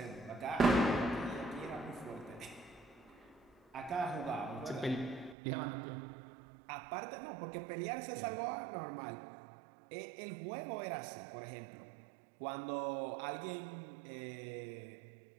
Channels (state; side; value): drops out; left; at 5.4 s